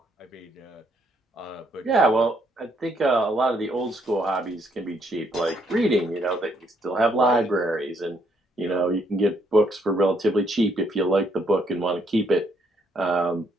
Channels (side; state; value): both; normal; correlation 0.71